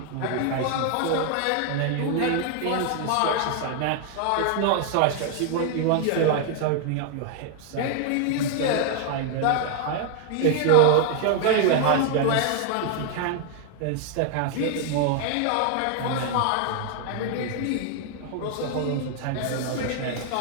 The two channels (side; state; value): both; different; correlation 0.00